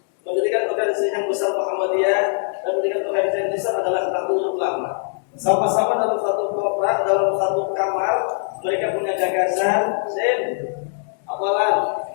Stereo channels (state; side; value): silent; right; digital silence